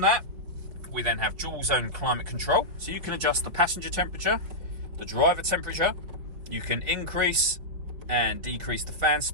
that, we then have dual zone climate control. So you can adjust the passenger temperature, the driver temperature. You can increase and decrease the fan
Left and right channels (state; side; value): late; left; 5.1 ms